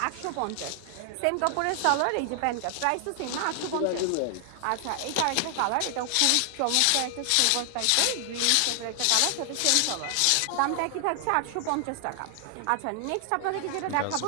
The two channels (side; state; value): both; different; correlation 0.00